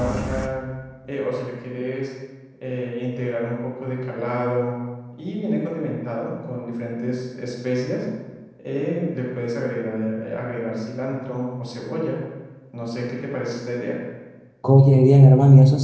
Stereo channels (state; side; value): identical; both; correlation 1.00